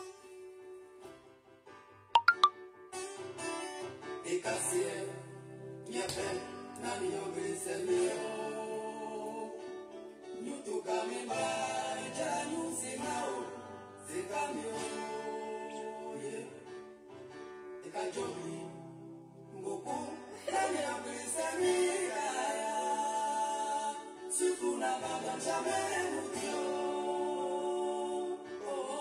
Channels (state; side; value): identical; both; correlation 1.00